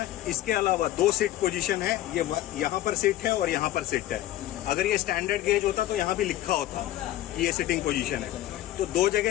इसके अलावा 2 सिट पोजीशन है, ये यहाँ पर सिट है और यहाँ पर सिट है। अगर ये स्टैंडर्ड गेज होता तो यहाँ भी लिखा होता कि ये सिटिंग पोजीशन है। तो 2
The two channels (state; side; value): quieter; right; 14.2 dB